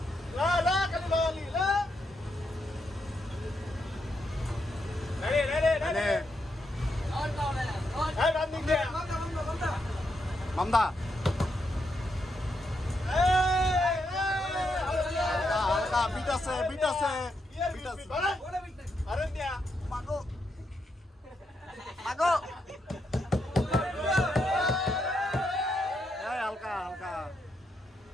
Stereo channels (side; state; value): both; normal; correlation 0.81